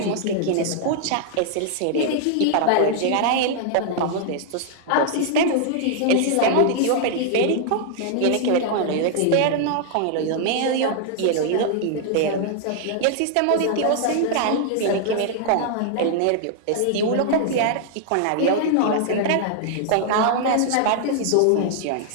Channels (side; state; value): both; different; correlation 0.00